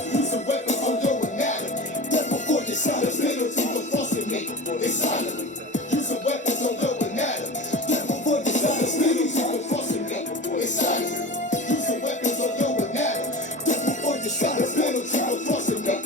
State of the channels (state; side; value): normal; both; correlation 0.31